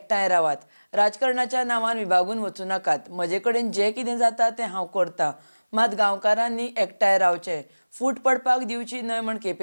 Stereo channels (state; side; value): inverted; both; correlation -1.00